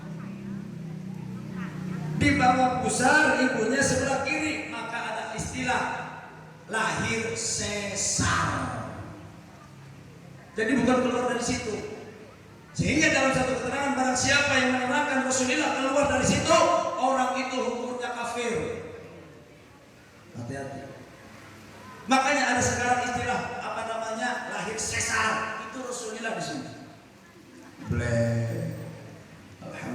Di bawah pusar ibunya sebelah kiri, maka ada istilah lahir sesar. Jadi bukan keluar dari situ. Sehingga dalam satu keterangan, barang siapa yang menerangkan Rasulullah keluar dari situ, orang itu hukumnya kafir. Hati-hati. Makanya ada sekarang istilah apa namanya lahir sesar, itu Rasulullah di sini.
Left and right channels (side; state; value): both; identical; correlation 1.00